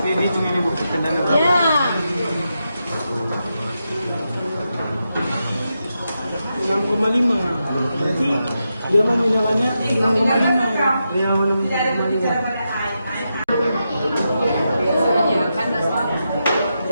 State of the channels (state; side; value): inverted; both; correlation -0.87